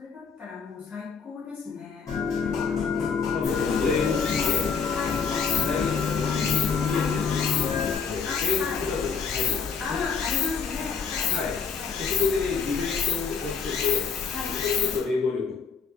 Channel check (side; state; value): right; quieter; 5.7 dB